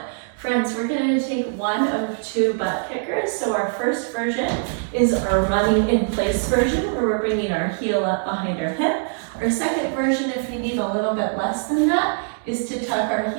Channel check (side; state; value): left; silent; 64 dB below the other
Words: Friends, we're going to take one of 2 butt kickers. So our first version is our running in place version where we're bringing our heel up behind our hip. Our second version, if you need a little bit less than that, is to tuck our